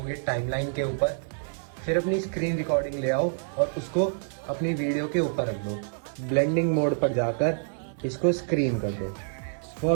टाइमलाइन के ऊपर, फिर अपनी स्क्रीन रिकॉर्डिंग ले आओ और उसको अपनी वीडियो के ऊपर रख दो। ब्लेंडिंग मोड पर जाकर इसको स्क्रीन कर दो।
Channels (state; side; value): silent; left; digital silence